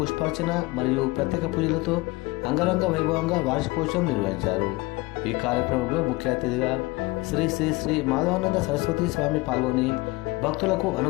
మరియు ప్రత్యేక పూజలతో అంగరంగ వైభవంగా వార్షికోత్సవం నిర్వహించారు. ఈ కార్యక్రమంలో ముఖ్య అతిథిగా శ్రీ శ్రీ శ్రీ మాధవానంద సరస్వతి స్వామి పాల్గొని భక్తులకు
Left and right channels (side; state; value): right; quieter; 22.3 dB